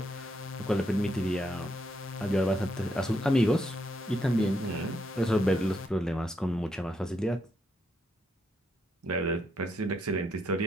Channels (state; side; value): normal; both; correlation 0.77